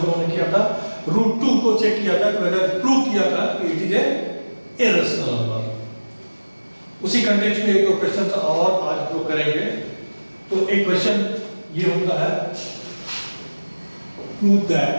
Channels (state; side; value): inverted; both; correlation -1.00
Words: लोगों ने किया था, √2 को चेक किया था, वेदर प्रूव किया था कि it is a irrational number. उसी कंटेक्स्ट में एक दो क्वेश्चन और आज हम लोग करेंगे। तो एक क्वेश्चन ये होता है, prove that